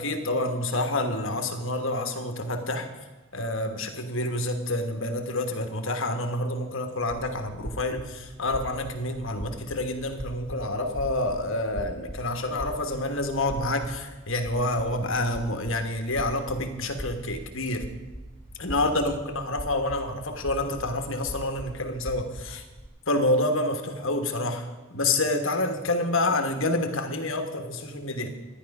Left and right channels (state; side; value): normal; both; correlation -0.01